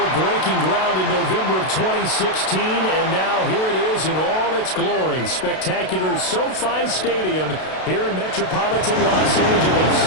breaking ground in November of 2016, and now here it is in all its glory. Spectacular SoFi Stadium here in metropolitan Los Angeles.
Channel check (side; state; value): right; late; 32 ms